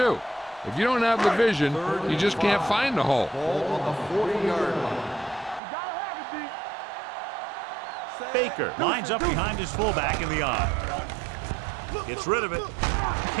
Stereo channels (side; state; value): left; drops out; at 5.6 s